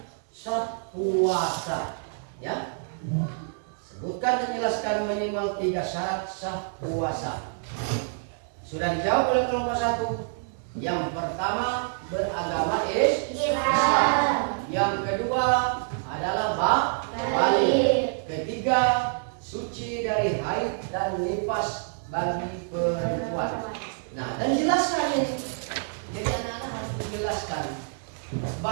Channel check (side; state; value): left; silent; 60 dB below the other